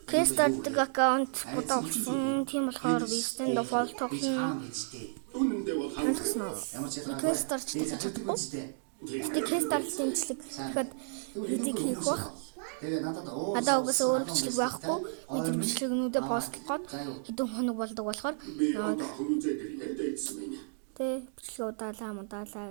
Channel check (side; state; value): left; silent; digital silence